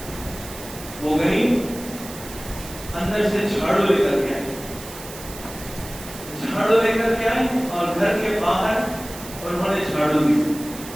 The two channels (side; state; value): right; noise; hiss, 14 dB below the sound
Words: وہ گئی اندر سے جھاڑو لے کر کے آئی, جھاڑو لے کر کے آئی اور گھر کے باہر انہوں نے جھاڑو دی.